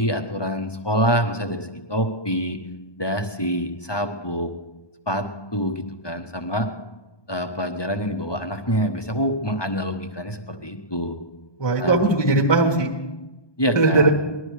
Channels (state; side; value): late; right; 1.2 ms